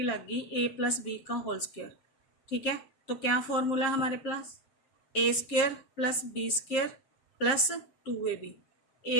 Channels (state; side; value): late; right; 7.5 ms